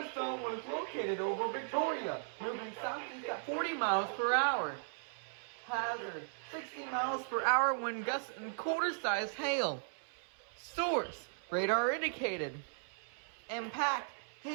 was located over Victoria, moving southeast at 40 miles per hour. Hazard, 60 miles per hour wind gusts and quarter-sized hail. Source, radar indicated. Impact,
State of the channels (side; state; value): left; silent; 53 dB below the other